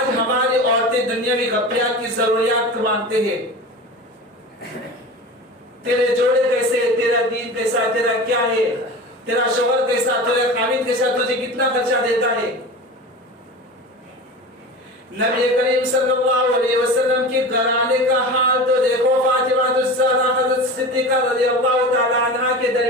हमारी औरतें दुनियावी गपियात की जरूरियात मांगते हैं, तेरे जोड़े कैसे, तेरा दीन कैसा, तेरा क्या है, तेरा शोहर कैसा, तेरा खामिद कैसा, तुझे कितना खर्चा देता है। नबी करीम सल्लल्लाहु अलैहि वसल्लम के घराने का हाल तो देखो। फातिमा ज़हरा हज़रत सिद्दीका रज़ियल्लाहु ताला अन्हा के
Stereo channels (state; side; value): normal; both; correlation 0.32